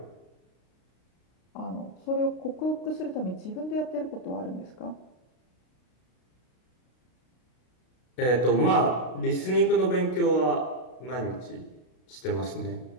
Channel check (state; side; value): late; right; 32 ms